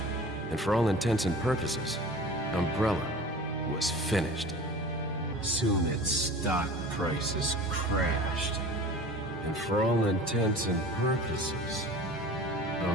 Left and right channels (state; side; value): normal; both; correlation 0.40